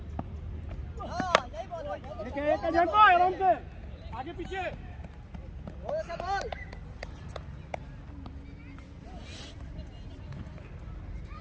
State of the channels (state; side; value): identical; both; correlation 1.00